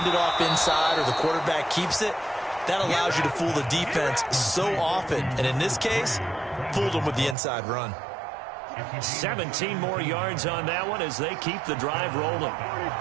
off inside or the quarterback keeps it, that allows you to fool the defense so often. And in this case, fooled them with the inside run. 17 more yards on that one as they keep the drive rolling.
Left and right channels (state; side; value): drops out; left; at 7.4 s